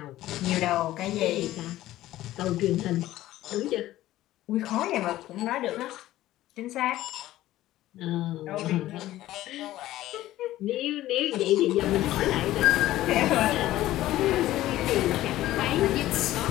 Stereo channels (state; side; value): quieter; right; 15.0 dB